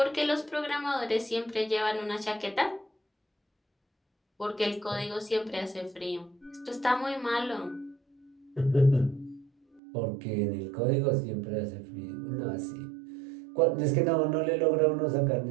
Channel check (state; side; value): drops out; left; at 9.8 s